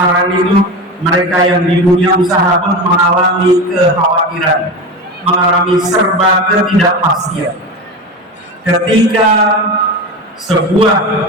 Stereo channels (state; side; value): normal; both; correlation 0.24